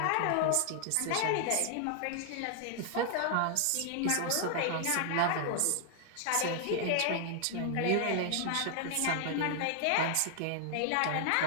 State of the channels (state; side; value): different; both; correlation 0.00